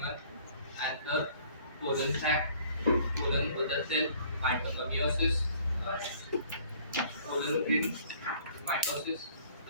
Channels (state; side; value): inverted; both; correlation -0.56